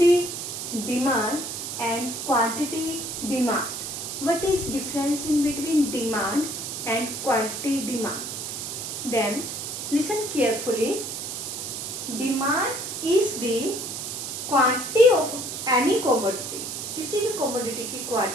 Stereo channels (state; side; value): noise; right; hiss, 6 dB below the sound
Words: demand and quantity demand. What is difference in between demand and quantity demand? Then listen carefully. Demand is the quantity of any commodity. किसी भी commodity की